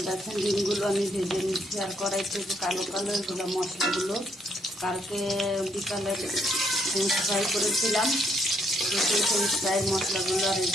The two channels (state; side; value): normal; both; correlation 0.72